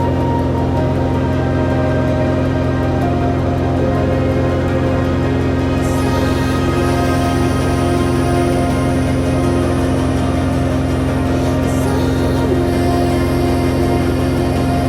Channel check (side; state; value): both; identical; correlation 1.00